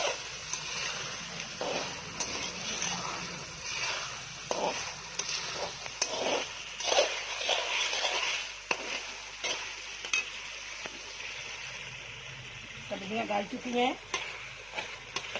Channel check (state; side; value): noise; right; hum, 20 dB below the sound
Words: सब्जियां गल चुकी हैं।